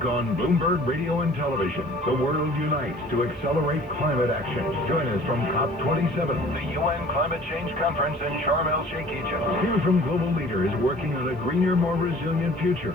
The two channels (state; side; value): normal; both; correlation 0.49